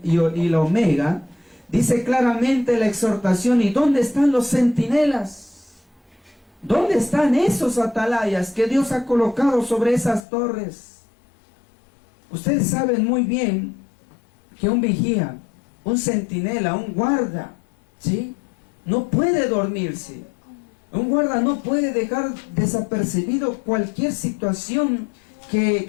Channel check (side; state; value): right; drops out; at 10.2 s